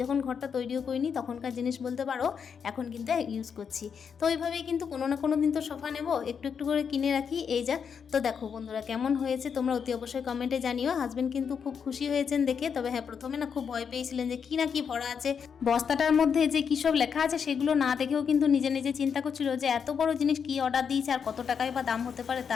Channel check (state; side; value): quieter; right; 6.8 dB